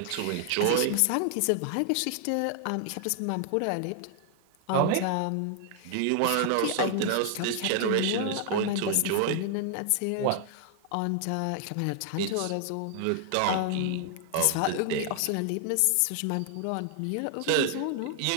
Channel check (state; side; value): different; both; correlation 0.00